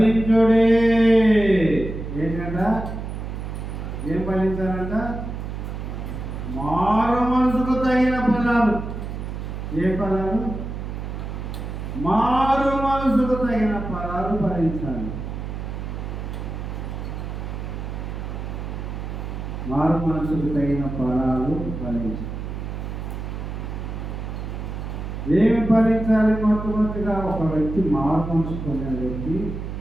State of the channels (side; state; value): right; noise; hum, 6 dB below the sound